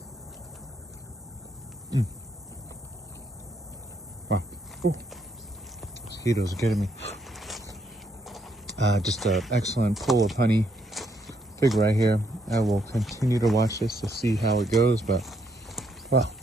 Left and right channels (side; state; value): both; normal; correlation 0.73